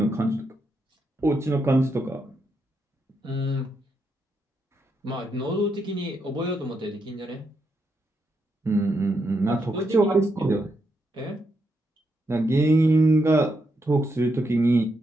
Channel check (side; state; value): both; normal; correlation 0.81